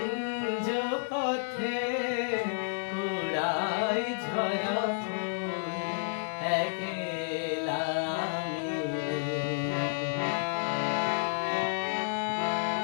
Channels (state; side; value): silent; right; digital silence